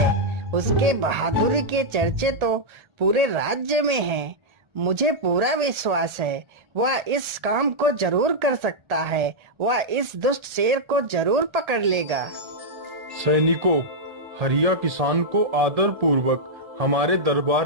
उसके बहादुरी के चर्चे तो पूरे राज्य में हैं। मुझे पूरा विश्वास है वह इस काम को जरूर कर सकता है। वह इस दुष्ट शेर को जरूर पकड़ लेगा। सैनिकों, हरिया किसान को आदर पूर्वक हमारे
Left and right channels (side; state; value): left; late; 1.3 ms